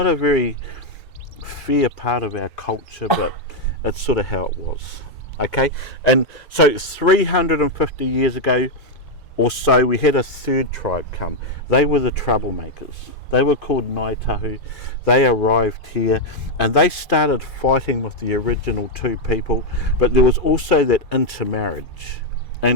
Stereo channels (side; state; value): both; normal; correlation 0.00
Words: a very fair part of our culture, but it's sort of how it was. Okay, and so 350 years ago or so, we had a third tribe come. They were the troublemakers. They were called Ngaitahu. They arrived here and they started fighting with the original two people, but there was also that intermarriage.